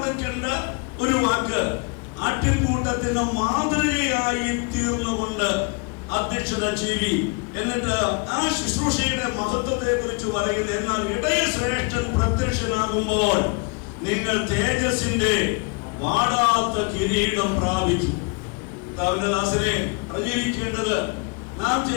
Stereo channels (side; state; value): right; quieter; 33.0 dB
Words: ഒരു വാക്ക്, ആട്ടിൻകൂട്ടത്തിന് മാതൃകയായി തീർന്നുകൊണ്ട് അധ്യക്ഷത ചെയ്യും. എന്നിട്ട് ആ ശുശ്രൂഷയുടെ മഹത്വത്തെ കുറിച്ച് പറയുന്നത്, എന്നാൽ ഇടയശ്രേഷ്ഠൻ പ്രത്യക്ഷനാകുമ്പോൾ നിങ്ങൾ തേജസ്സിന്റെ വാടാത്ത കിരീടം പ്രാപിച്ചു. ദാസനെ അറിഞ്ഞിരിക്കേണ്ടത്, നാം